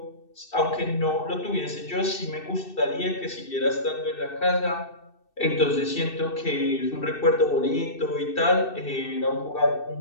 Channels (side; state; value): right; late; 2.6 ms